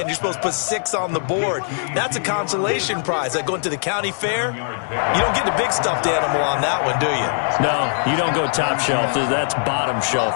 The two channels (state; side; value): silent; right; digital silence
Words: You're supposed to put 6 on the board. That's a consolation prize. Like going to the county fair, you don't get the big stuffed animal on that one, do you? No, you don't go top shelf. That's bottom